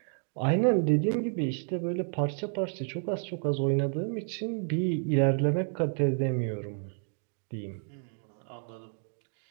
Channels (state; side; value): silent; left; 58 dB below the other